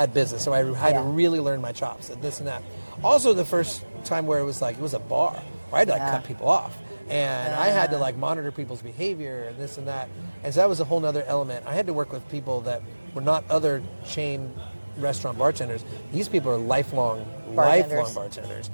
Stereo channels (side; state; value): both; inverted; correlation -1.00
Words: business. So I had to really learn my chops at this and that. Also, the first time where it was a bar where I had to cut people off. And I had to monitor people's behavior and this and that. And so that was a whole nother element. I had to work with people that were not other chain restaurant bartenders. These people are lifelong bartenders.